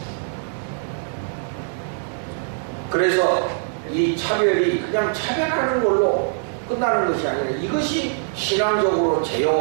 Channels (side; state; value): left; silent; digital silence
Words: 그래서 이 차별이 그냥 차별하는 걸로 끝나는 것이 아니라 이것이 신앙적으로